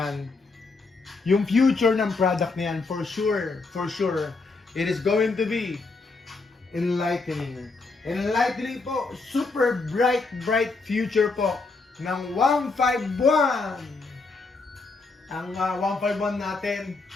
for sure, it is going to be enlightening. Enlightening po, super bright future po ng 151. Ang 151 natin,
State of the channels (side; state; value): right; quieter; 3.9 dB